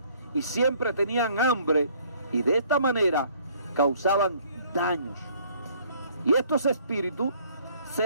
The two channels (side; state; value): both; inverted; correlation -0.59